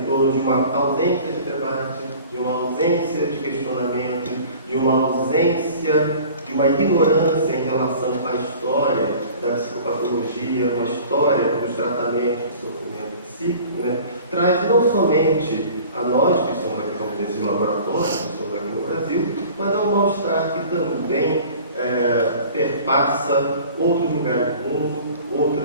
torno de uma ausência de debate, de uma ausência de questionamento, de uma ausência, de uma ignorância em relação à história da psicopatologia, uma história dos tratamentos do sofrimento psíquico, né? Traz não somente a nós que estamos aqui como desses laboratórios, que estamos aqui no Brasil, mas é um mal-estar que também perpassa outros lugares do mundo,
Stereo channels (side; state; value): both; inverted; correlation -0.45